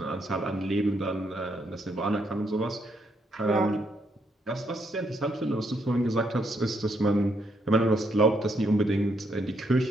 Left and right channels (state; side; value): normal; both; correlation 0.75